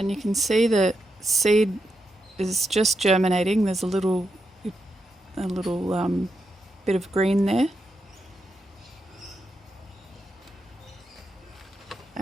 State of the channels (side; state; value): both; normal; correlation 0.85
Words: you can see the seed is just germinating. There's a little bit of green there,